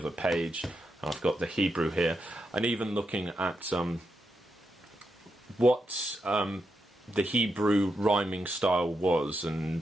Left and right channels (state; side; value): normal; both; correlation 0.84